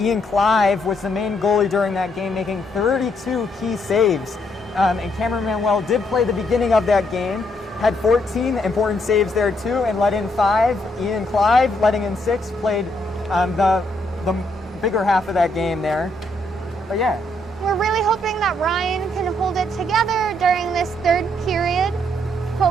Clive was the main goalie during that game, making 32 key saves. And Cameron Manuel did play the beginning of that game, had 14 important saves there too, and let in 5. Ian Clive, letting in 6, played the bigger half of that game there. But yeah. We're really hoping that Ryan can hold it together during this 3rd period.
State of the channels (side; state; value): both; normal; correlation 0.73